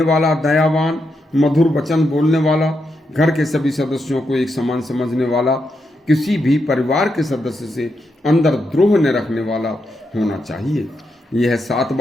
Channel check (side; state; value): both; normal; correlation 0.83